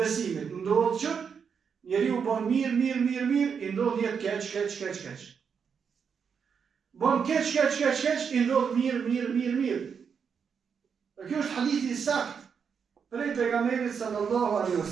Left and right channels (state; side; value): quieter; left; 6.6 dB